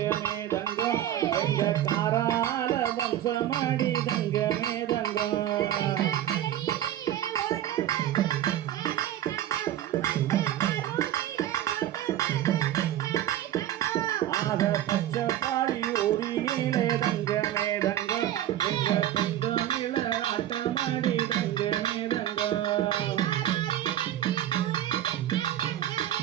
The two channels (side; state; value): left; quieter; 12.2 dB